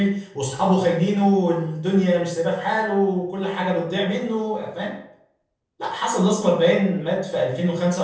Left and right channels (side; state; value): both; identical; correlation 1.00